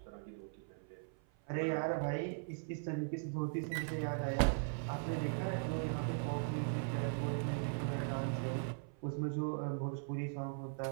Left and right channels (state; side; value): silent; left; 51 dB below the other